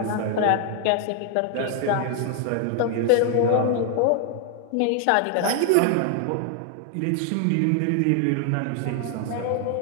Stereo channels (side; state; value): both; different; correlation 0.00